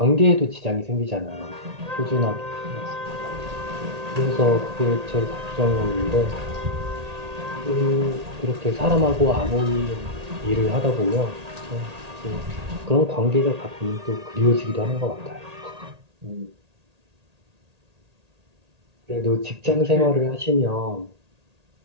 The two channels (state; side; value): late; left; 1.8 ms